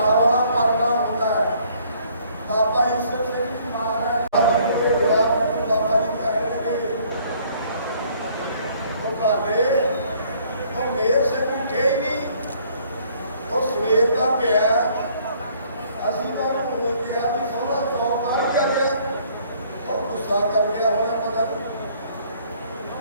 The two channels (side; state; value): both; inverted; correlation -0.61